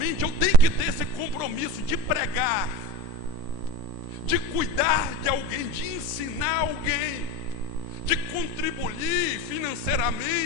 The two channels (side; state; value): left; late; 11 ms